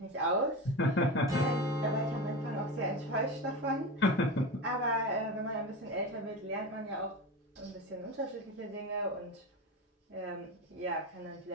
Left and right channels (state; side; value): normal; both; correlation 0.24